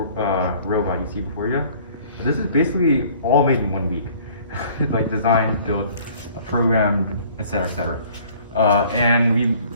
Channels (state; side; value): inverted; both; correlation -0.54